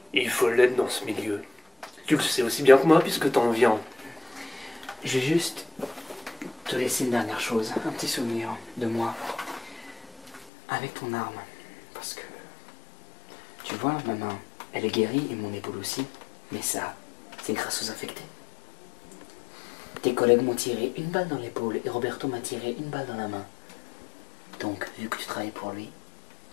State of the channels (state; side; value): drops out; right; at 10.5 s